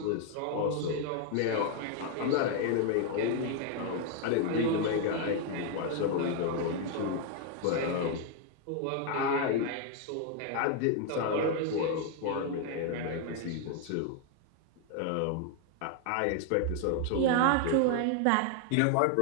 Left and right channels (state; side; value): different; both; correlation 0.00